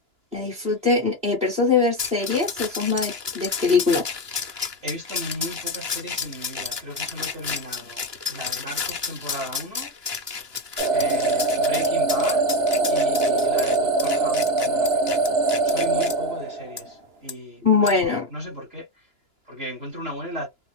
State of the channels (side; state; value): left; late; 2.9 ms